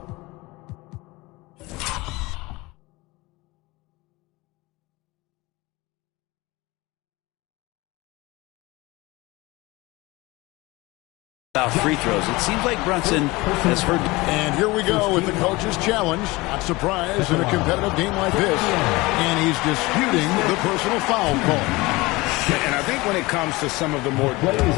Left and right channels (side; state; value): right; quieter; 22.1 dB